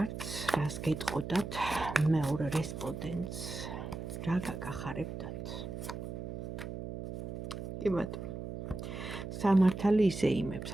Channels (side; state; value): right; noise; hum, 7 dB below the sound